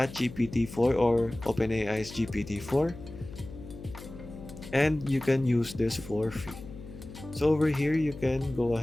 4 or OpenAI's GPT-4, and you can use this for free. So over here you can go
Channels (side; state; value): left; noise; hum, 14 dB below the sound